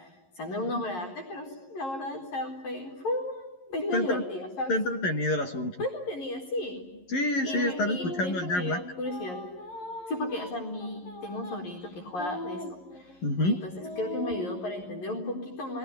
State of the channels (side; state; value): right; late; 11 ms